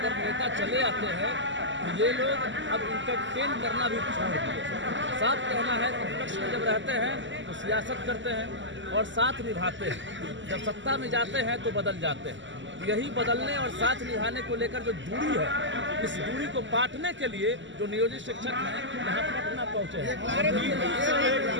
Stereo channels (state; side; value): late; left; 0.54 ms